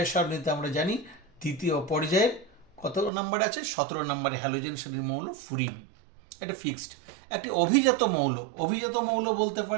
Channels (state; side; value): drops out; left; at 3.1 s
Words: সারণীতে আমরা জানি তৃতীয় পর্যায়ের কত নাম্বার আছে? 17 নম্বরে হ্যালোজেন শ্রেণীর মৌল ফ্লুরিন। এটা ফিক্সড। একটি অভিজাত মৌল, অভিজাত মৌল বলতে